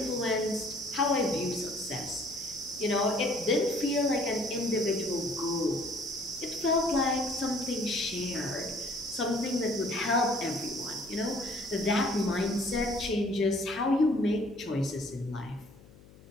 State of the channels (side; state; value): left; noise; hum, 23 dB below the sound